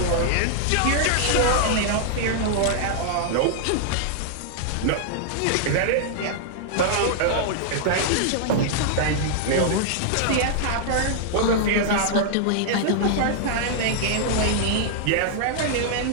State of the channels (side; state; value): both; different; correlation -0.01